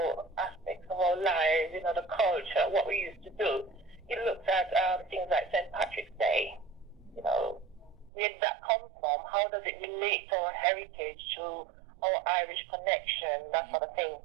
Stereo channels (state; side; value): drops out; left; at 8.1 s